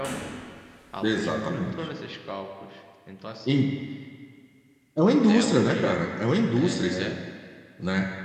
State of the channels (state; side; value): identical; both; correlation 1.00